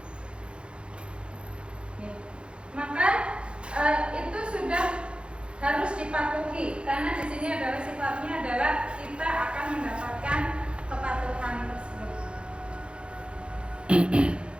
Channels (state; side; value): late; left; 0.056 ms